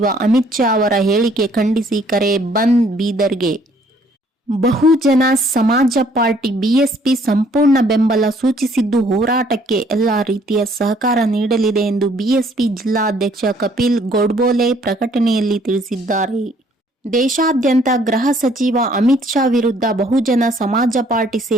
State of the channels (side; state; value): both; normal; correlation 0.62